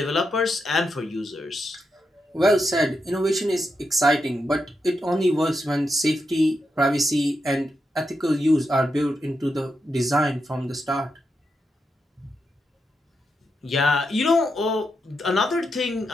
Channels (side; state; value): both; normal; correlation 0.85